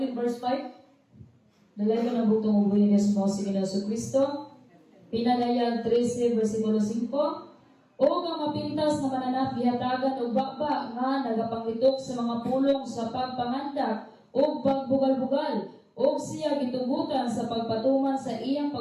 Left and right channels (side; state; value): both; identical; correlation 1.00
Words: verse 5? Dalay ko na butong ubuhin niya sa mga sige sa Kristo. Pinagayag 13, versikulo 5. O nga mapintas na mananap gihatagan og bakba nga nagapanglitok sa mga pulong sa pagpangandak o pagbugal-bugal o siya gitugutan sa pagpatuman sa iyang